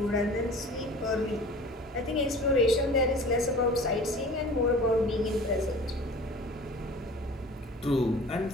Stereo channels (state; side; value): normal; both; correlation 0.42